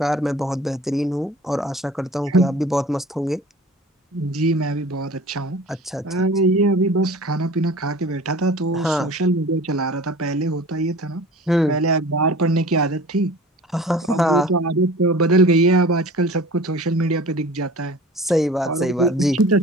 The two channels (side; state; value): both; normal; correlation 0.42